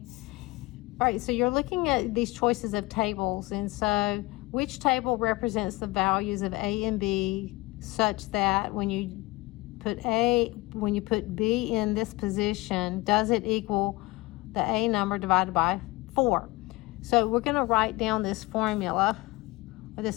All right, so you're looking at these choices of tables, and so which table represents the values of A and B such that when you put B in this position, does it equal the A number divided by 4? So we're going to write down this formula or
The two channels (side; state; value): right; quieter; 22.5 dB